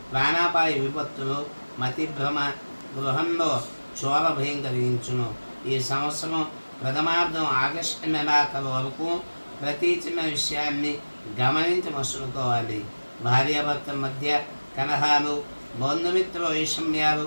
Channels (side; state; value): both; inverted; correlation -1.00